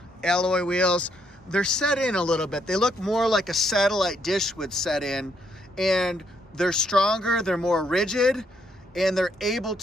alloy wheels. They're set in a little bit. They look more like a satellite dish would set in, and they're stronger, they're more rigid, and they're able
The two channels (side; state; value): both; normal; correlation 0.73